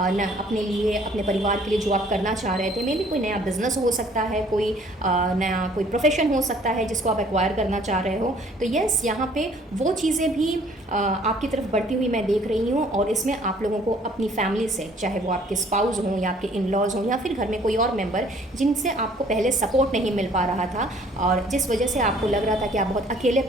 अपने लिए, अपने परिवार के लिए, जो आप करना चाह रहे थे। मे बी कोई नया बिजनेस हो सकता है, कोई नया कोई प्रोफेशन हो सकता है जिसको आप एक्वायर करना चाह रहे हो। तो यस, यहाँ पे वो चीज़ें भी आपकी तरफ बढ़ती हुई मैं देख रही हूँ, और इसमें आप लोगों को अपनी फैमिली से, चाहे वो आपके स्पाउस हों या आपके इन लॉज हों या फिर घर में कोई और मेम्बर जिनसे आपको पहले सपोर्ट नहीं मिल पा रहा था और जिस वजह से आपको लग रहा था कि आप बहुत अकेले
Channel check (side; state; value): both; normal; correlation 0.57